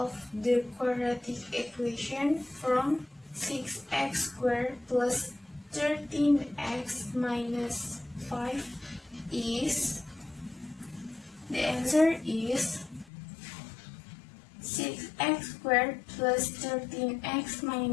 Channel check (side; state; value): right; drops out; at 13.1 s